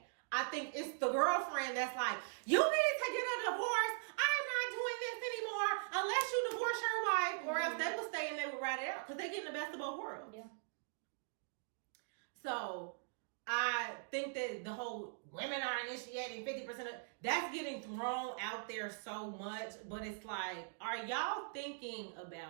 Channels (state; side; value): silent; left; digital silence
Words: I think it's the girlfriend that's like, you need to get a divorce. I'm not doing this anymore unless you divorce your wife, or else they will stay and they will ride it out because they get the best of both worlds. Yeah. So I think that the whole women are initiating 50% of that's getting thrown out there so much, but it's like, are y'all thinking